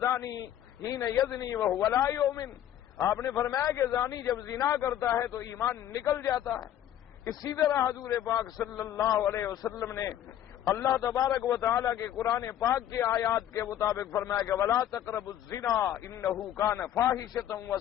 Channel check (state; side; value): quieter; right; 11.3 dB